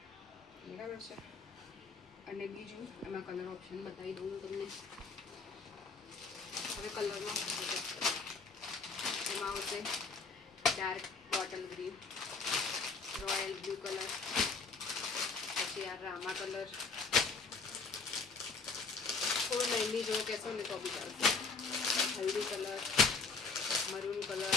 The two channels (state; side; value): quieter; right; 4.5 dB